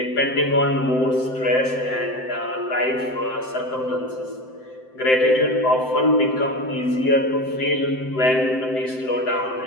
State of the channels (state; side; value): late; right; 7.8 ms